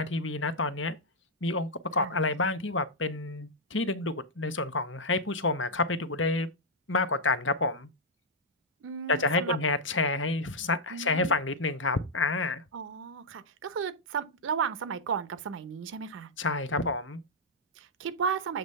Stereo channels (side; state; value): both; normal; correlation -0.05